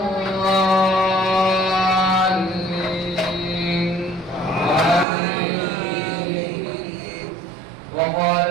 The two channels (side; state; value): left; drops out; at 5.1 s